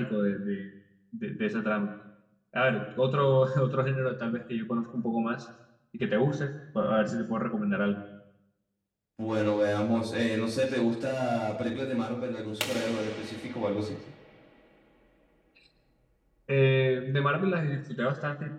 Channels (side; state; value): both; identical; correlation 1.00